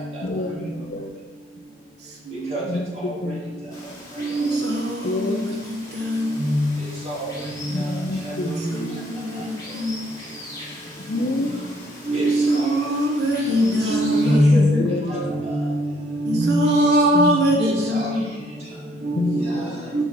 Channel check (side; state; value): both; normal; correlation 0.66